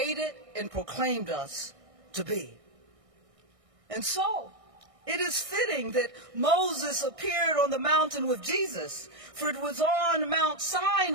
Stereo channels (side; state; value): left; late; 1.6 ms